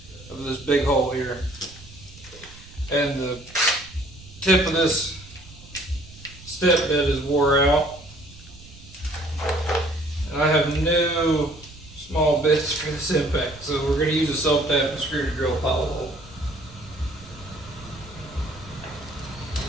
of this big hole here. And the tip of this step bit is wore out. And I have no small bits for this impact, so we're going to use a self-tapping screw to drill a hollow hole.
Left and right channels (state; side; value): noise; right; rumble, 20 dB below the sound